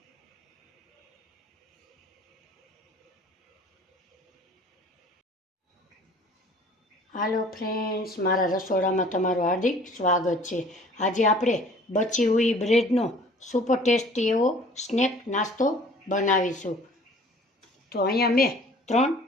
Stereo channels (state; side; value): normal; both; correlation 0.51